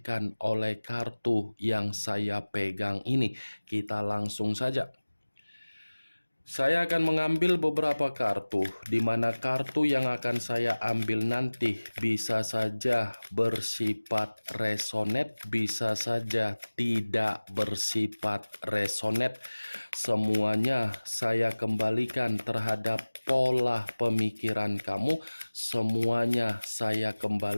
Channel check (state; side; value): inverted; both; correlation -1.00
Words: oleh kartu yang saya pegang ini. Kita langsung saja. Saya akan mengambil beberapa kartu, di mana kartu yang akan saya ambil nanti bisa saja bersifat resonate, bisa saja tidak bersifat resonate. Semuanya saya kembalikan terhadap pola pemikiran kamu, semuanya saya